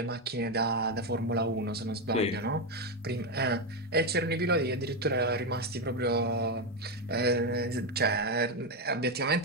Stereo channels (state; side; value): normal; both; correlation 0.07